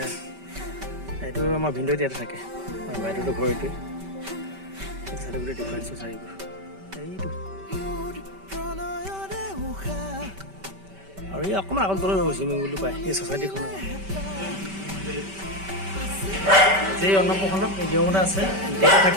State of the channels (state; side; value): late; left; 5.2 ms